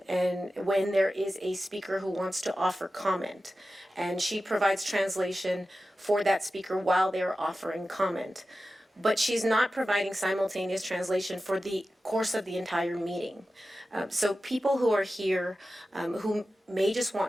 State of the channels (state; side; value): normal; both; correlation 0.94